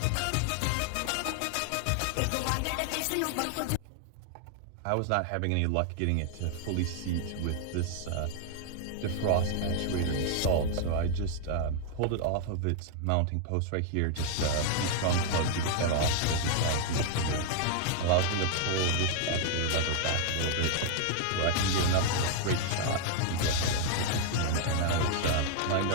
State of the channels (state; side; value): different; both; correlation 0.00